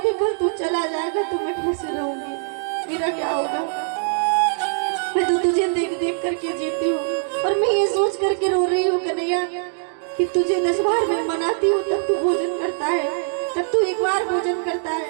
कि कल तू चला जाएगा तो मैं कैसे रहूंगी, मेरा क्या होगा। मैं तो तुझे देख देख करके जीती हूँ, और मैं ये सोच करके रो रही हूँ कन्हैया कि तुझे 10 बार मैं मनाती हूँ तब तू भोजन करता है, तब तू एक बार भोजन करता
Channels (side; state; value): left; silent; digital silence